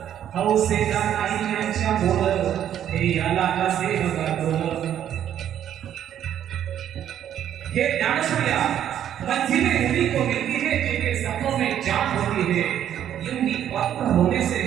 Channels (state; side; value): quieter; left; 10.4 dB